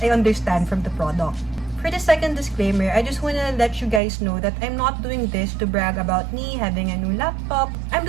I understand from the product. For the second disclaimer, I just wanna let you guys know that I'm not doing this to brag about me having a new laptop. I'm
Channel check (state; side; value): drops out; left; at 4.0 s